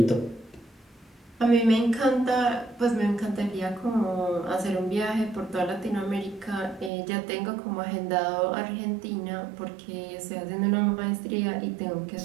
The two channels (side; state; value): left; drops out; at 6.9 s